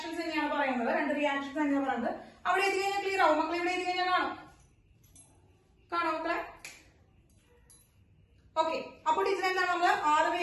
തന്നെയാണ് പറയുന്നത്. അവിടെ എത്തി കഴിഞ്ഞാൽ ക്ലിയർ ആവും മക്കളെ. ഇവിടെ എത്തി കഴിഞ്ഞാൽ കാണോ മക്കളെ? ഓക്കെ. അപ്പോൾ ടീച്ചർ എന്താണ്? നമ്മള് 6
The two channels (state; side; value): identical; both; correlation 1.00